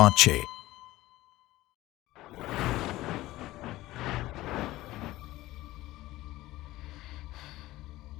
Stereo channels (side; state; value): right; quieter; 17.2 dB